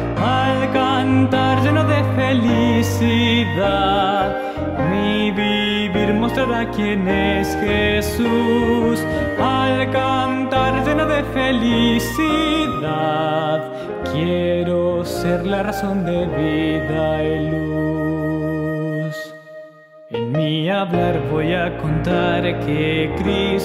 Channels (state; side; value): identical; both; correlation 1.00